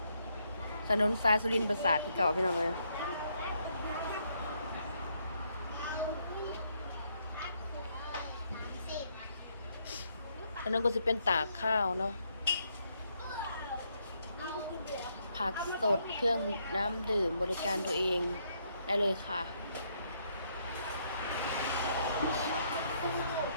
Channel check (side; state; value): both; inverted; correlation -0.74